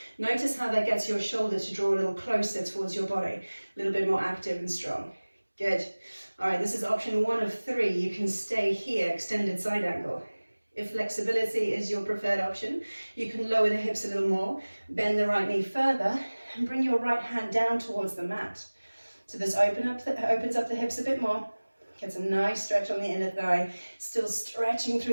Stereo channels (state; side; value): inverted; both; correlation -1.00